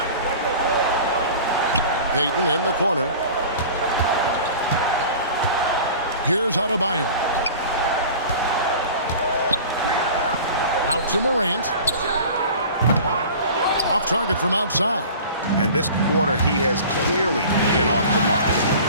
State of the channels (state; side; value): inverted; both; correlation -0.40